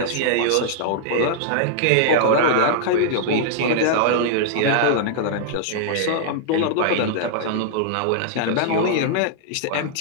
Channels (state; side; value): different; both; correlation -0.01